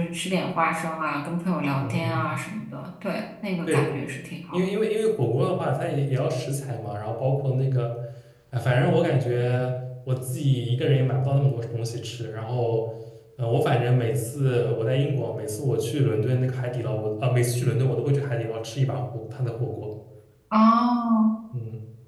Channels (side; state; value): both; identical; correlation 1.00